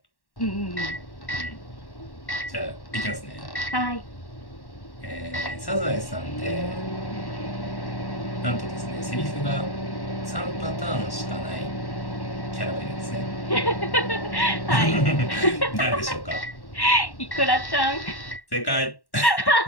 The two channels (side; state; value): right; late; 1.1 ms